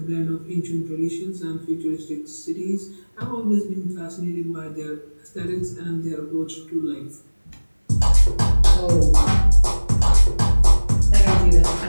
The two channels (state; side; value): inverted; both; correlation -1.00